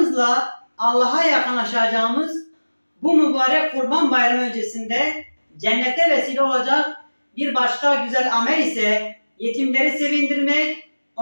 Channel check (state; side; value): inverted; both; correlation -1.00